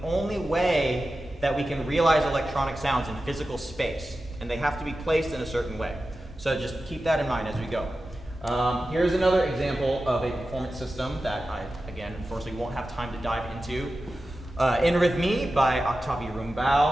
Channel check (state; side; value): normal; both; correlation 0.93